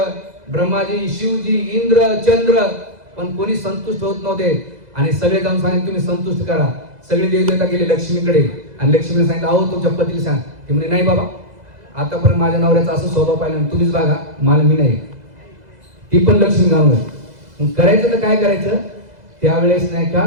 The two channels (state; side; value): late; left; 2.0 ms